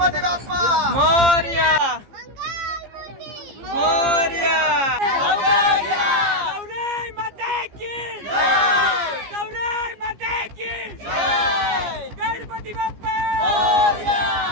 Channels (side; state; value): left; late; 15 ms